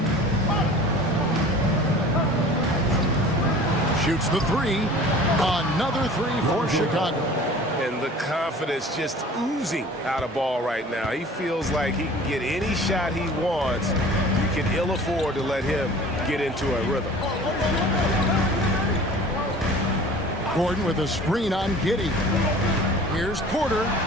Shoots the three. Another three for Chicago. And the confidence just oozing out of Ball right now. He feels like he can get any shot he wants. You can ill afford to let him get into a rhythm. Gordon with a screen on Giddey. Here's Porter.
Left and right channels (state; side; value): normal; both; correlation 0.44